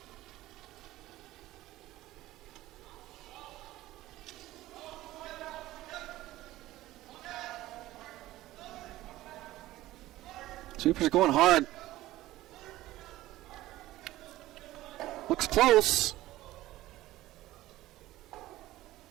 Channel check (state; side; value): quieter; left; 16.2 dB